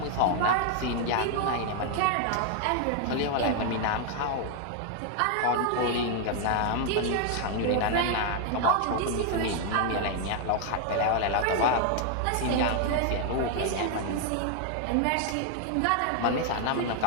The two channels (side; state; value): both; different; correlation 0.00